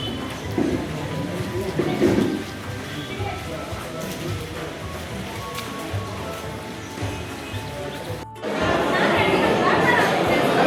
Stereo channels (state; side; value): identical; both; correlation 1.00